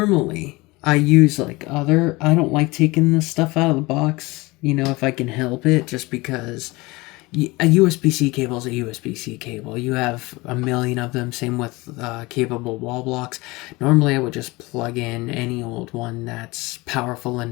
I use I don't like taking this stuff out of the box, you know, if I can help it, just because a USB-C cable is a USB-C cable. You have a million of them, same with capable wall blocks. Normally, I would just plug in any old one that's powerful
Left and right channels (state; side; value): quieter; right; 22.7 dB